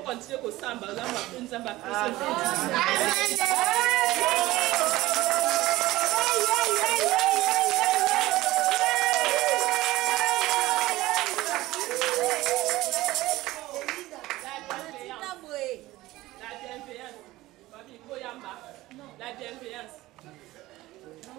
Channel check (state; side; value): quieter; left; 17.7 dB